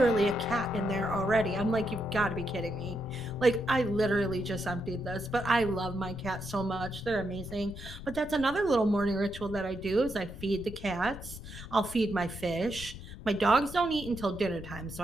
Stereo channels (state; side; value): noise; left; rumble, 12 dB below the sound